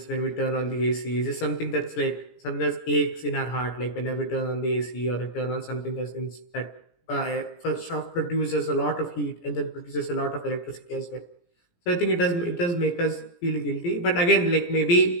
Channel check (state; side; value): late; right; 17 ms